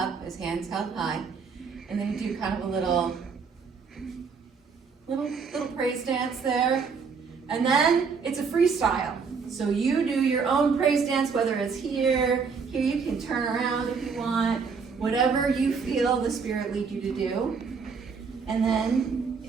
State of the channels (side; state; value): left; quieter; 5.5 dB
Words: as hands held high. And then you do kind of a little praise dance there. And then it's a freestyle. So you do your own praise dance, whether it's here you can turn around if you want, whatever you feel the Spirit lead you to do. And then